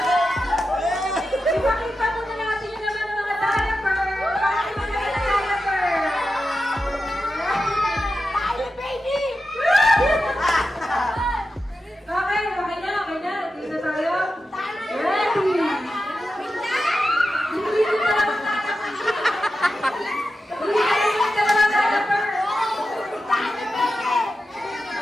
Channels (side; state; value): both; normal; correlation 0.91